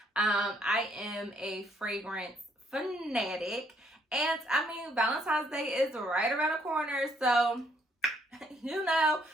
I am a fragrance fanatic, and I mean, Valentine's Day is right around the corner, so you know,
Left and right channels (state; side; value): normal; both; correlation 0.69